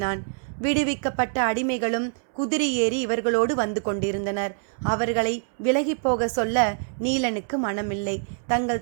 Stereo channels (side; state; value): left; silent; 62 dB below the other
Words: விடுவிக்கப்பட்ட அடிமைகளும் குதிரை ஏறி இவர்களோடு வந்து கொண்டிருந்தனர். அவர்களை விலகி போக சொல்ல நீலனுக்கு மனமில்லை.